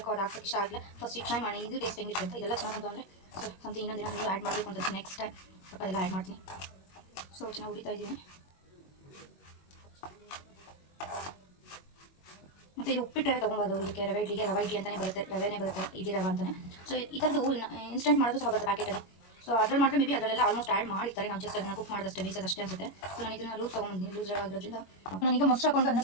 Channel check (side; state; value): right; late; 21 ms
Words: ಅದು ಹಾಕೋಕ್ಕೆ ಇಷ್ಟ ಆಗಲಿಲ್ಲ. ಫಸ್ಟ್ ಟ್ರೈ ಮಾಡಿ ಇದು ಟೇಸ್ಟ್ ಹೆಂಗಿರುತ್ತೆ ಅಂತ. ಇದೆಲ್ಲ ಚೆನ್ನಾಗಿ ಬಂತು ಅಂದರೆ ಸೊ ಸಮಥಿಂಗ್ ಇನ್ನೊಂದಿನ ನೀವು ಆ್ಯಡ್ ಮಾಡಬೇಕು ಅಂತ ನೆಕ್ಸ್ಟ್ ಟೈಮ್ ಸ್ವಲ್ಪ ಅದೆಲ್ಲ ಆ್ಯಡ್ ಮಾಡ್ತೀನಿ. ಸೊ ಚೆನ್ನಾಗಿ ಉರಿತಾ ಇದ್ದೀನಿ. ಮತ್ತು ಇದು ಉಪ್ಪಿಟ್ಟು ರವೆ ತೊಗೊಬೋದು. ಇದಕ್ಕೆ ರವೆ ಇಡ್ಲಿಗೆ ರವೆ ಇಡ್ಲಿ ಅಂತಲೇ ಬರುತ್ತೆ, ರವೆನೇ ಬರುತ್ತೆ, ಇಡ್ಲಿ ರವೆ ಅಂತಲೇ. ಸೊ ಈ ಥರದ್ದು ಇನ್ಸ್ಟೆಂಟ್ ಮಾಡೋದು ಸಹ ಬರುತ್ತೆ ಪ್ಯಾಕೆಟಲ್ಲಿ. ಸೊ ಅದ್ರಲ್ಲಿ ಮಾಡಿದ್ರೆ ಮೇ ಬಿ ಅದರಲ್ಲೆಲ್ಲ ಆಲ್ಮೋಸ್ಟ್ ಆ್ಯಡ್ ಮಾಡಿರ್ತಾರೆ. ನಾವು ಜಸ್ಟ್ ಅದನ್ನು ಕುಕ್ ಮಾಡೋದಷ್ಟೇ, ಬೇಯಿಸೋದಷ್ಟೇ ಅನ್ಸುತ್ತೆ. ಸೊ ನಾನು ಇದನ್ನು ಲೂಸ್ ತೊಗೊಂಡಿದ್ದೀನಿ. ಲೂಸ್ ರವೆ ಆಗಿರೋದ್ರಿಂದ ನಾನೀಗ ಮೊಸರು ಹಾಕೊಂಡು ಅದನ್ನು